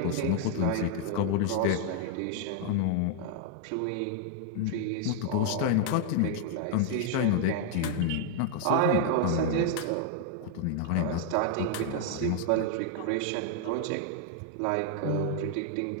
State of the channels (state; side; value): different; both; correlation 0.00